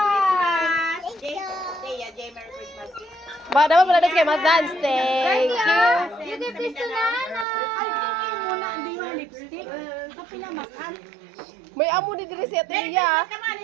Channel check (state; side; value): drops out; left; at 7.5 s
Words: Christmas. Jay, Merry Christmas. Ba, dapat pala kay Mas Dance. Thank you. You give this to Nana. Ay, thank you muna. Hindi yung lipstick. Sa pinamakan. May amo ni Diri si Atilia.